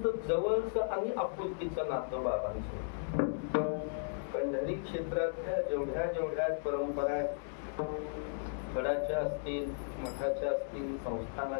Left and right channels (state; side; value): silent; right; digital silence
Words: जवळचं आणि आपुलकीचं नातं बाबांचं. पंढरी क्षेत्रातल्या जेवढ्या परंपरा आहेत गडाच्या असतील, मठाच्या असतील,